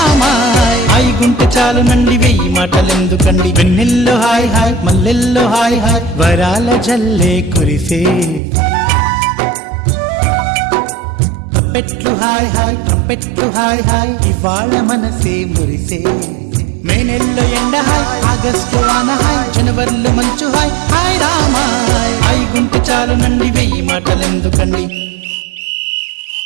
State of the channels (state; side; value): drops out; left; at 8.4 s